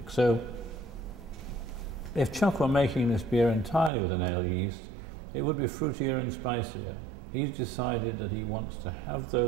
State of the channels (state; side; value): drops out; left; at 3.9 s